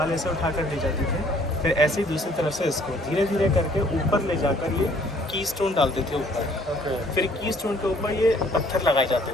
ऐसे उठा कर ले जाते थे, फिर ऐसे ही दूसरी तरफ से इसको धीरे धीरे करके ऊपर ले जाकर ये की स्टोन डालते थे ऊपर। फिर की स्टोन के ऊपर ये पत्थर लगाए जाते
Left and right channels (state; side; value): normal; both; correlation 0.59